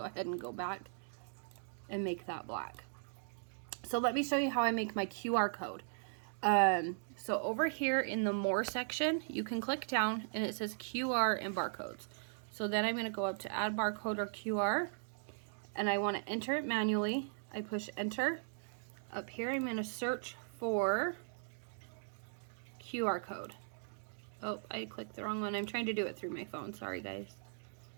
ahead and go back and make that black. So let me show you how I make my QR code. So over here in the more section, you can click down and it says QR and barcodes. So then I'm going to go up to add barcode or QR, and I want to enter it manually. I push enter. Up here I'm going to search for QR code. Oh, I clicked the wrong one. I'm trying to do it through my phone. Sorry guys.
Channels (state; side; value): silent; left; digital silence